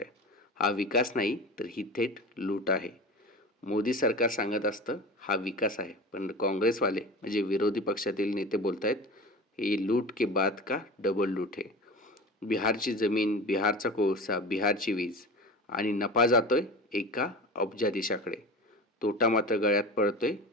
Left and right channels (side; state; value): both; normal; correlation 0.32